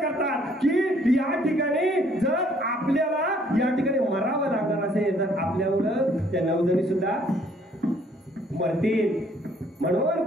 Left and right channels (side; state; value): both; normal; correlation 0.63